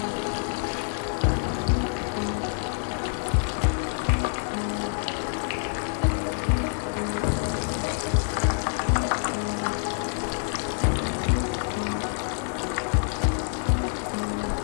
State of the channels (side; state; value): right; silent; digital silence